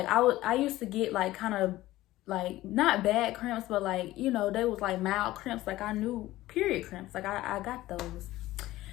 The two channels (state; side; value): quieter; right; 16.4 dB